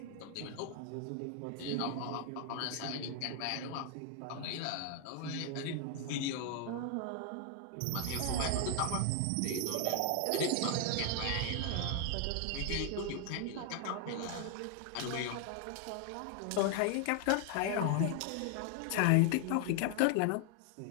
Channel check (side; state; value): both; different; correlation 0.00